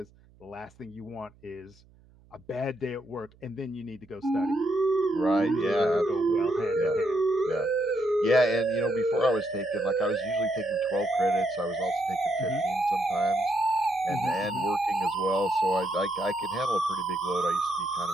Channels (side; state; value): right; noise; hum, 28 dB below the sound